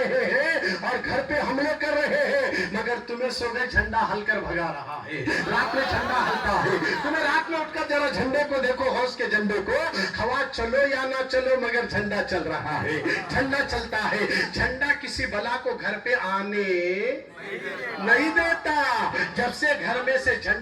ہیں اور گھر پہ حملے کر رہے ہیں, مگر تمہیں صبح جھنڈا ہل کر بھگا رہا ہے. رات میں جھنڈا ہلتا ہے. تمہیں رات میں اٹھ کر ذرا جھنڈے کو دیکھو, غوث کے جھنڈے کو. ہوا چلو یا نہ چلو مگر جھنڈا چل رہا ہے, جھنڈا چلتا ہے. جھنڈا کسی بلا کو گھر پہ آنے نہیں دیتا. جب سے گھر میں سے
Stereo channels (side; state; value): both; identical; correlation 1.00